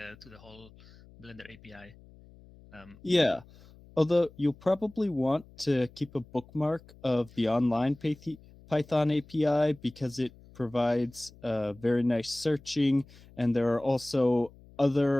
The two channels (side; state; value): left; noise; hum, 23 dB below the sound